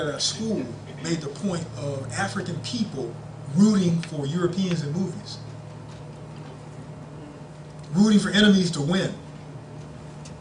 our school made the point of African people rooting for Europeans in movies, rooting for enemies to win.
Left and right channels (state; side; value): identical; both; correlation 1.00